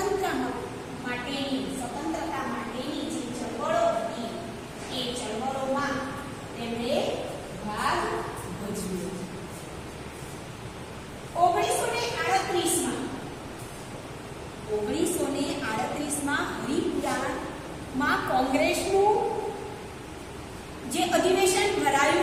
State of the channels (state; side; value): identical; both; correlation 1.00